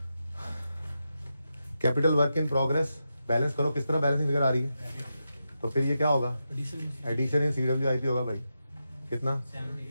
Capital work in progress balance करो, किस तरह बैलेंसिंग फिगर आ रही है? तो फिर ये क्या होगा? एडिशन इन CWIP होगा भाई, कितना?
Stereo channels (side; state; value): both; inverted; correlation -0.88